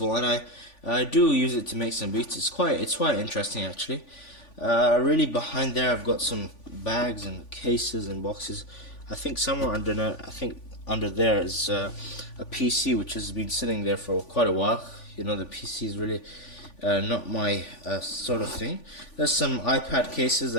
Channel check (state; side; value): late; right; 3.5 ms